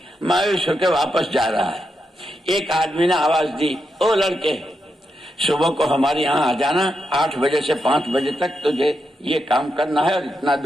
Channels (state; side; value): normal; both; correlation 0.84